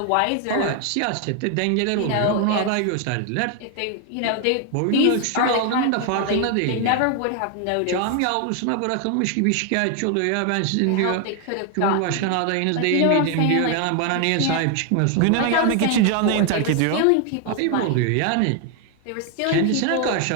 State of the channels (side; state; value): both; different; correlation 0.00